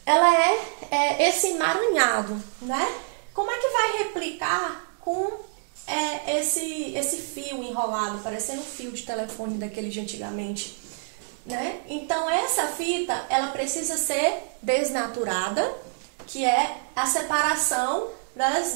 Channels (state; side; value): silent; left; digital silence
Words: Ela é esse emaranhado, né? Como é que vai replicar com esse fio enrolado, parecendo um fio de telefone daquele de antigamente, né? Então, essa fita, ela precisa ser desnaturada, que é a separação das